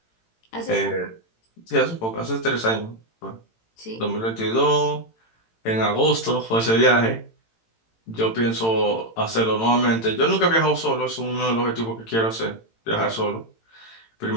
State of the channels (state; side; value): late; right; 18 ms